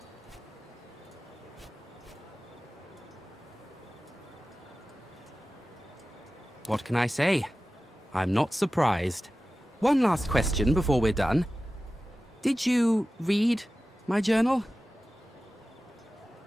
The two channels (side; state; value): both; normal; correlation 0.95